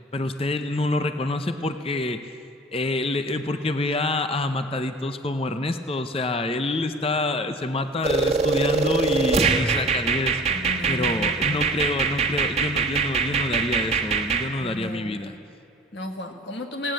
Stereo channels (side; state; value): both; normal; correlation 0.43